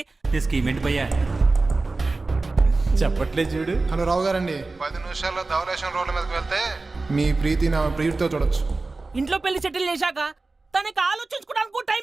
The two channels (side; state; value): left; quieter; 3.5 dB